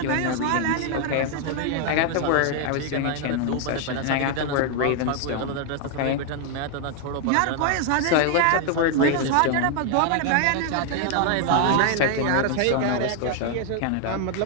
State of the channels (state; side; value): different; both; correlation 0.00